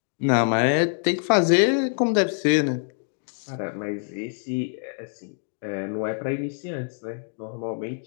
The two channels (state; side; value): silent; right; 62 dB below the other